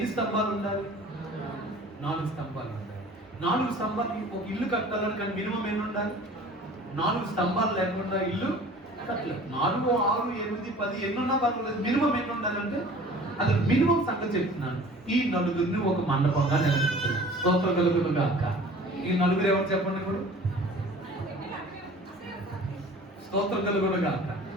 స్తంభాలు ఉండాలి? 4 స్తంభాలు ఉండాలి. 4 స్తంభాలు ఒక ఇల్లు కట్టాలని కానీ మినిమం ఎన్ని ఉండాలి? 4 స్తంభాలు లేకుండా ఇల్లు కట్టలేదు. 4, 6, 8, 10 ఎన్నున్నా పర్వాలేదు, మినిమం ఎన్ని ఉండాలంటే అది మినిమం సంగతి చెప్తున్నాను. ఈ నలుగురిని ఒక మండపంగా నిలబెడుతున్నాను. స్తోత్రం కలుగును గాక. ఈ నలుగురు ఎవరు చెప్పండి ఇప్పుడు? స్తోత్రం కలుగును గాక.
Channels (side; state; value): both; normal; correlation 0.46